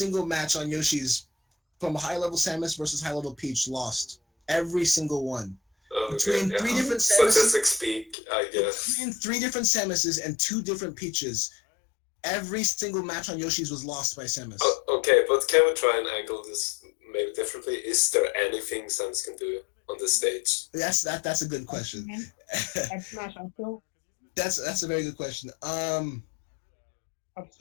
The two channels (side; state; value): right; drops out; at 8.2 s